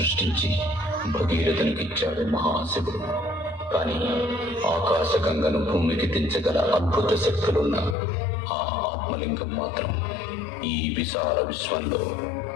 భగీరథునికిచ్చాడు మహాశివుడు. కానీ ఆకాశగంగను భూమికి దించగల అద్భుత శక్తులున్న ఆ ఆత్మలింగం మాత్రం ఈ విశాల విశ్వంలో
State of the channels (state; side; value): drops out; right; at 8.0 s